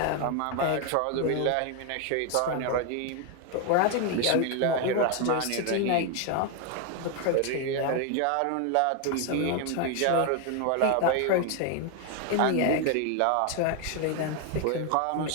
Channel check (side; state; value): both; different; correlation 0.01